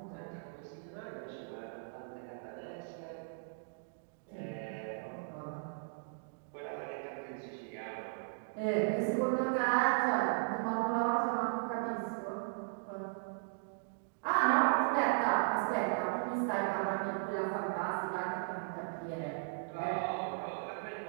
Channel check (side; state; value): left; silent; digital silence